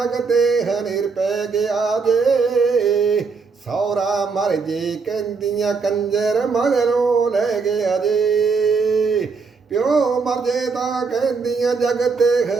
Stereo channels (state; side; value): quieter; left; 4.8 dB